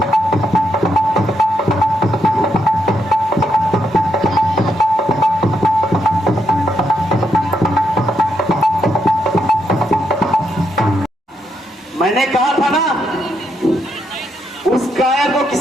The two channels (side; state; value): both; normal; correlation 0.79